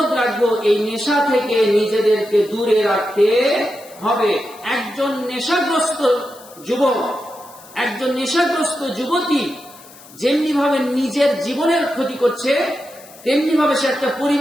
রাখবো এই নেশা থেকে নিজেদেরকে দূরে রাখতে হবে। একজন নেশাগ্রস্ত যুবক, একজন নেশাগ্রস্ত যুবতী যেমনি ভাবে নিজের জীবনের ক্ষতি করছে, তেমনি ভাবে সে একটা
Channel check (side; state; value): left; noise; hiss, 22 dB below the sound